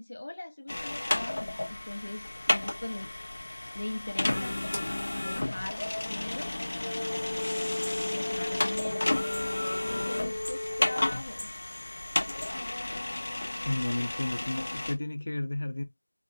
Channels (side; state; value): both; inverted; correlation -1.00